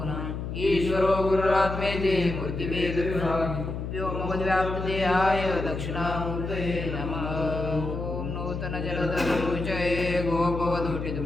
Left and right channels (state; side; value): noise; left; hum, 5 dB below the sound